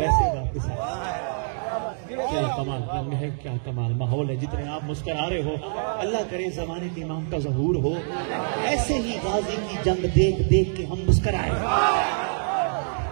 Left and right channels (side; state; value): left; silent; digital silence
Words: वापस आएगा। क्या कमाल रंग है, क्या कमाल माहौल है। जितने आप मुस्कुरा रहे हो, अल्लाह करे ज़माने के इमाम का ज़हूर हो, ऐसे ही गाजी की जंग देख देख के हम मुस्कुराए।